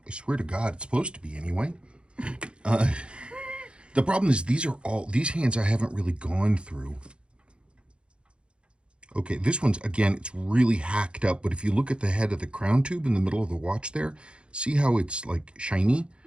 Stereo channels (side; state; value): left; late; 0.056 ms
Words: I swear to God, it's supposed to be anyway. The problem is these hands I haven't really gone through. Okay, this one's, again, it's really hacked up, but if you look at the head of the crown tube in the middle of the watch there, see how it's like shiny?